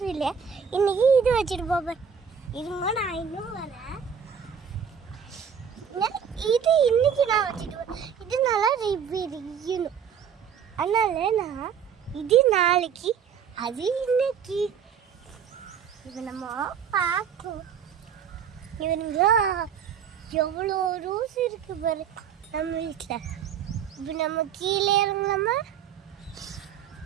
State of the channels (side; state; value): left; quieter; 7.5 dB